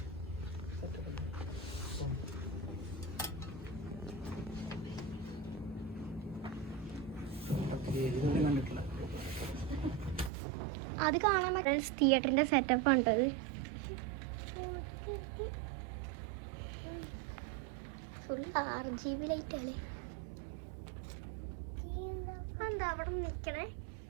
അത് കാണാൻ ഫ്രണ്ട്സ്, തിയേറ്ററിന്റെ സെറ്റപ്പ് ഉണ്ടത്. ഫുൾ RGB ലൈറ്റാണ്. എന്താ അവിടെ നിൽക്കണേ?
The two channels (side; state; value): left; drops out; at 10.3 s